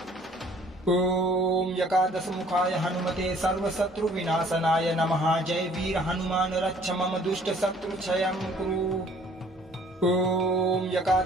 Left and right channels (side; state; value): both; normal; correlation 0.56